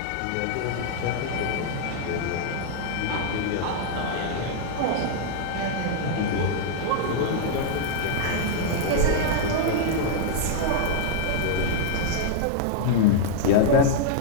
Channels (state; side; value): different; both; correlation -0.01